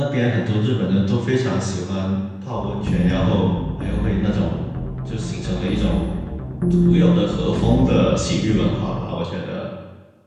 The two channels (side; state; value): both; identical; correlation 1.00